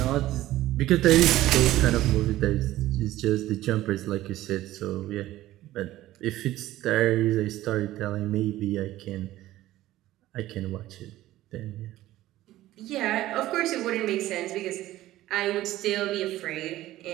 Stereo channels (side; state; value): left; quieter; 15.3 dB